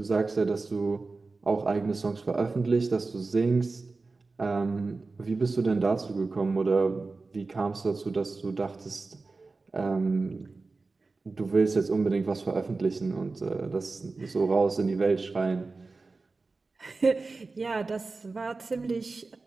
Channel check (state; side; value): quieter; left; 3.8 dB